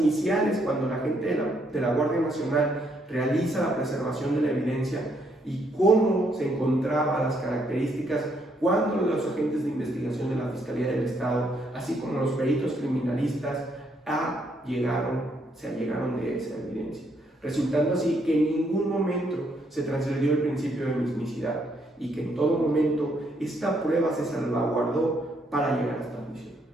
cuando la gente de la Guardia Nacional realiza la preservación de la evidencia y cómo se encontraban las características cuando los agentes de investigación de la Fiscalía del Estado, así como los peritos criminalistas, se allegaron de esa evidencia, resultando así que en ningún momento se transgredió el principio de mismicidad y que en todo momento esta prueba se salvaguardó para llegar hasta la juicio.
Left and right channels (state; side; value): normal; both; correlation 0.73